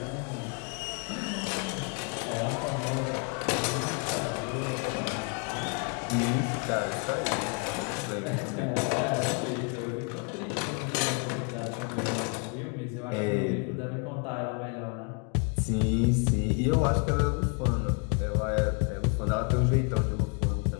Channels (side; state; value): right; quieter; 35.9 dB